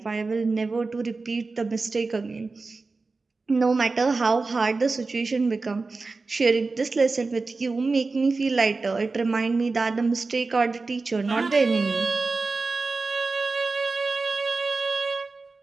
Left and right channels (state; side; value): quieter; left; 3.9 dB